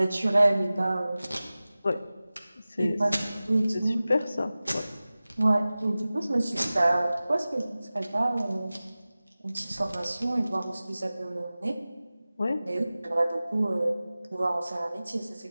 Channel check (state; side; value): inverted; both; correlation -0.97